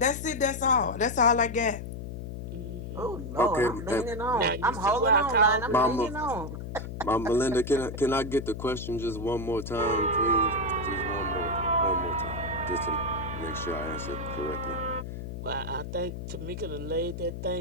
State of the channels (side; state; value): left; noise; hum, 8 dB below the sound